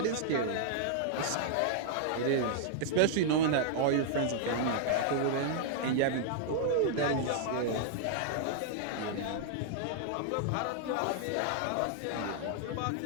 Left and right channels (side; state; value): both; different; correlation -0.01